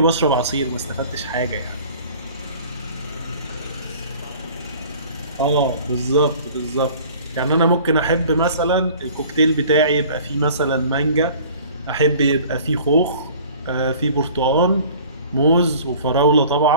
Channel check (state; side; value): inverted; both; correlation -0.47